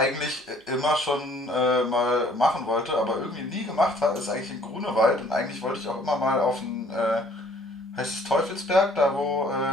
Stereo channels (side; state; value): both; normal; correlation 0.58